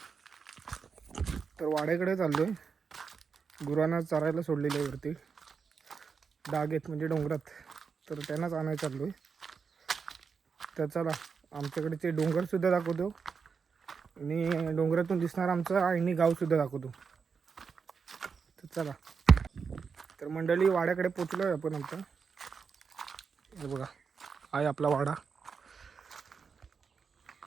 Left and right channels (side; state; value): left; quieter; 5.7 dB